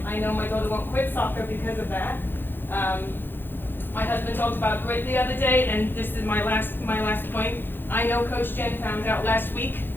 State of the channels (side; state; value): right; late; 0.099 ms